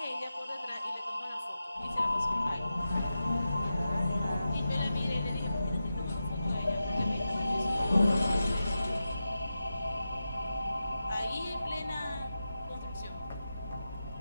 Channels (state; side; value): inverted; both; correlation -0.91